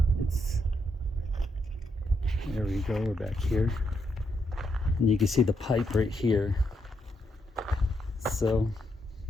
It's, there we go. We're back here. And you can see the pipe right here. So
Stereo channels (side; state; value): both; normal; correlation 0.79